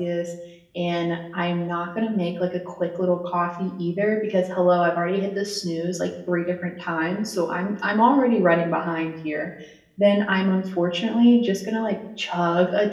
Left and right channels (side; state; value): both; identical; correlation 1.00